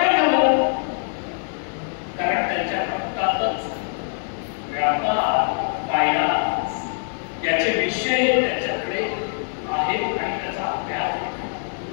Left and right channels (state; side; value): silent; right; 55 dB below the other